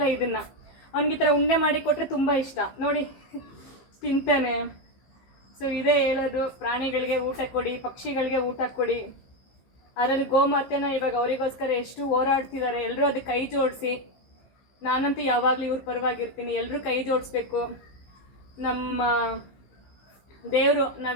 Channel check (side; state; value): right; late; 15 ms